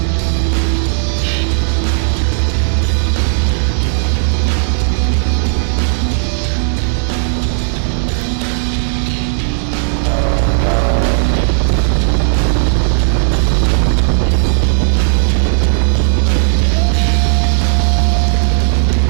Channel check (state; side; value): silent; left; digital silence